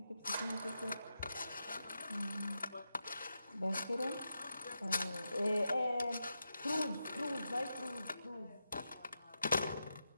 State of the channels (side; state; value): both; inverted; correlation -0.87